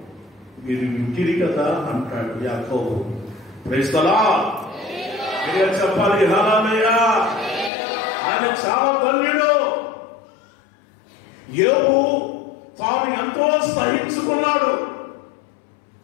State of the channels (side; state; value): right; drops out; at 7.7 s